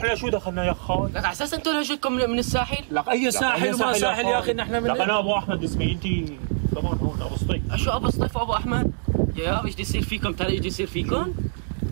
شو دخلنا يا خال؟ لك على اساس انتم لهجتكم من الساحل؟ لك اي ساحل وما ساحل يا اخي نحن من لك انا ابو احمد اسمي، انت كمان هون ابو سطيف. شو ابو سطيف وابو احمد؟ يا ايش بده يصير فيكم؟ ترى ايش بده يصير فيكم؟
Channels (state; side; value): silent; left; digital silence